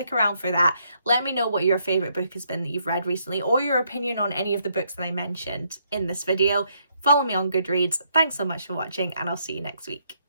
around for that. Let me know what your favourite book has been that you've read recently, or your opinion on any of the books that I mentioned in this video. Follow me on Goodreads. Thanks so much for watching, and I'll see you next week.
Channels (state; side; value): inverted; both; correlation -0.73